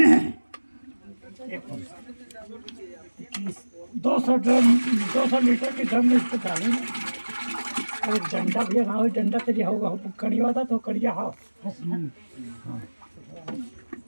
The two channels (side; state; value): both; inverted; correlation -1.00